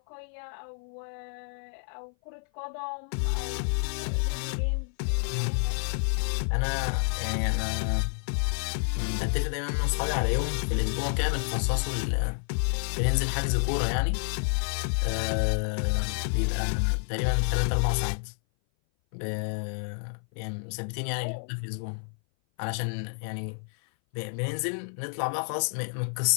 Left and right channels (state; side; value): silent; right; 57 dB below the other